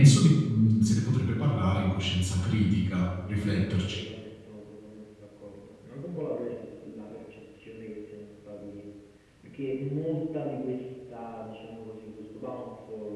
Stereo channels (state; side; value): identical; both; correlation 1.00